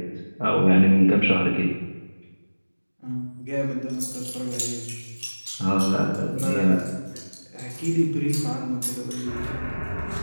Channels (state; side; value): inverted; both; correlation -1.00